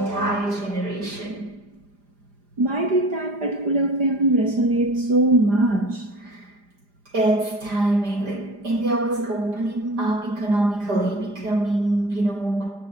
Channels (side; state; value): left; late; 4.9 ms